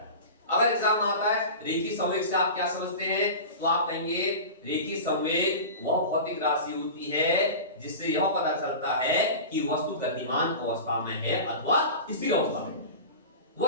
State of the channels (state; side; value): inverted; both; correlation -0.31